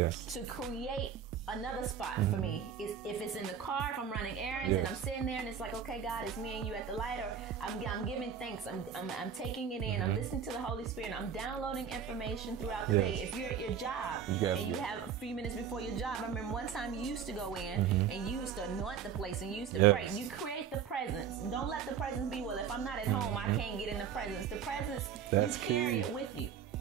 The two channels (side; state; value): left; quieter; 7.8 dB